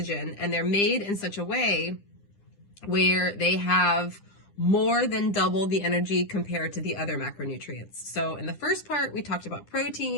and they're made in such a way where they have more than double the energy compared to the other macronutrients. So in the first part, we talked about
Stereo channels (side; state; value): right; late; 9.9 ms